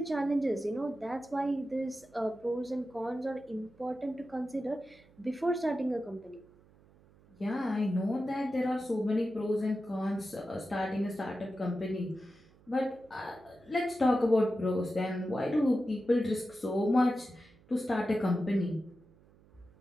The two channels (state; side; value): noise; right; hum, 27 dB below the sound